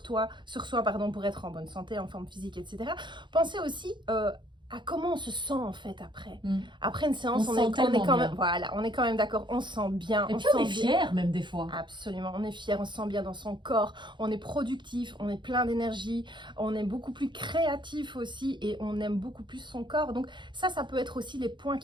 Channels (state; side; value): late; left; 0.23 ms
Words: pour être en bonne santé, en forme physique, etc. Pensez aussi à comment on se sent en fait après. Après une séance, on est quand même, voilà, on est quand même d'accord, on se sent bien. Et puis on est fier même des fois. Absolument, on est fier, on se sent bien dans son corps, on est productif, on est plein d'énergie, on est beaucoup plus créatif aussi et on aime beaucoup plus son corps. Donc ça peut être aussi les points